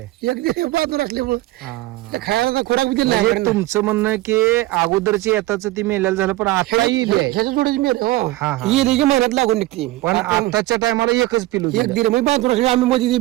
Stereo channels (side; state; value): left; quieter; 17.8 dB